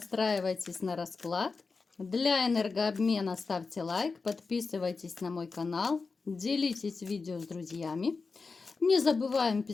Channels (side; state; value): right; quieter; 4.4 dB